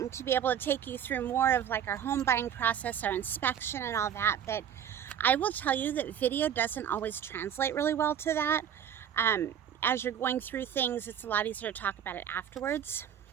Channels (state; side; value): quieter; left; 9.2 dB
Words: to be able to take you through more of like our home buying process, our inspection and all that, but I will tell you that video doesn't always translate really well to that. As you're going through things, it's a lot easier to talk about it afterwards.